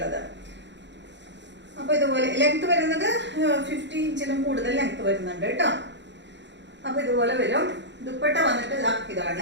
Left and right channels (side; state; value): left; late; 0.52 ms